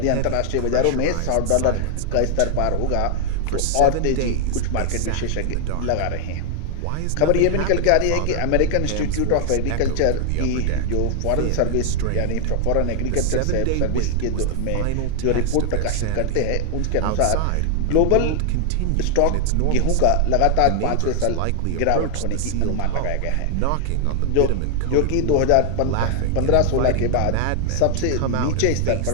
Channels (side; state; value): both; different; correlation 0.00